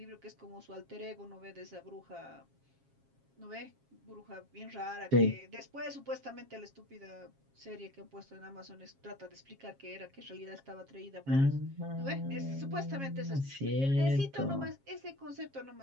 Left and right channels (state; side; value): late; left; 7.4 ms